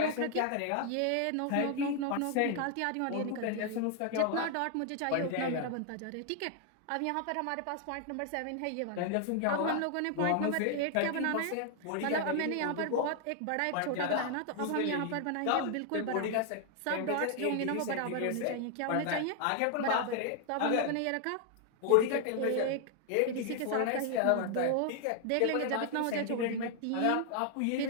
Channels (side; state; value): both; different; correlation 0.00